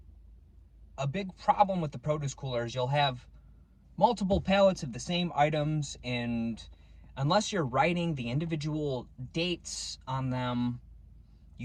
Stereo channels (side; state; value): both; identical; correlation 1.00